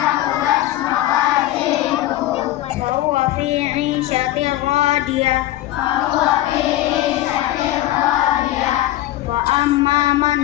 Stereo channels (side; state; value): right; quieter; 14.9 dB